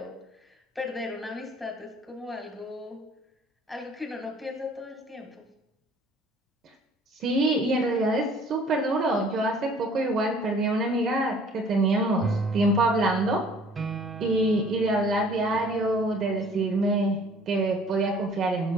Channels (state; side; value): normal; both; correlation 0.53